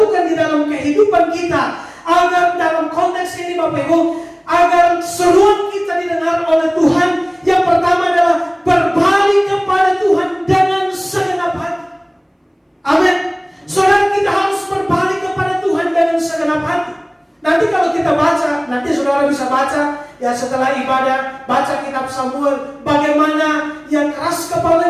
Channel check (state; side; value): identical; both; correlation 1.00